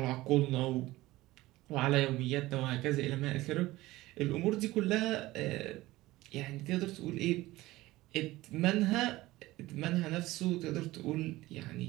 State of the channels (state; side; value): quieter; left; 18.1 dB